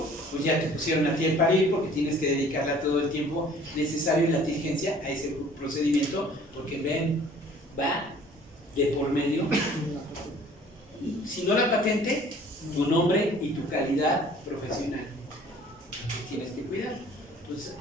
pues ya te pusieron a ti el parir porque tienes que dedicarle todo el tiempo necesario y la diligencia a ese procedimiento, porque ven, va de por medio, si no la patente, tu nombre y tu calidad profesional. Entonces tienes que cuidar. Entonces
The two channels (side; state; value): both; normal; correlation 0.52